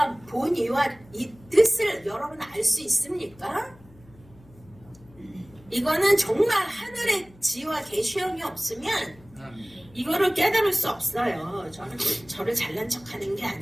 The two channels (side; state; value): left; noise; hum, 25 dB below the sound